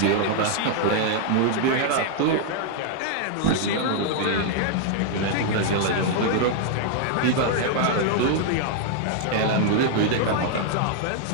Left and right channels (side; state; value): both; different; correlation 0.00